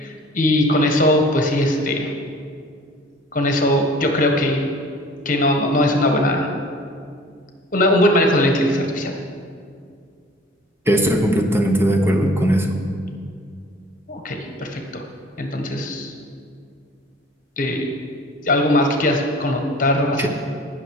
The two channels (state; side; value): normal; both; correlation 0.48